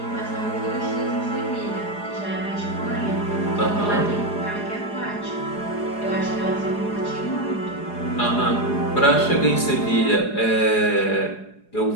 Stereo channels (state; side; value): late; right; 4.8 ms